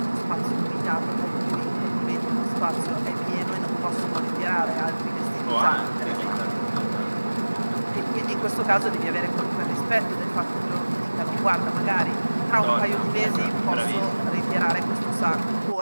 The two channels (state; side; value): inverted; both; correlation -1.00